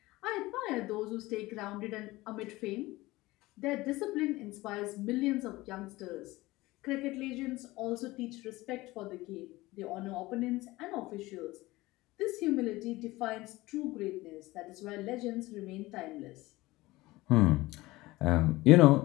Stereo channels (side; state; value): right; quieter; 19.5 dB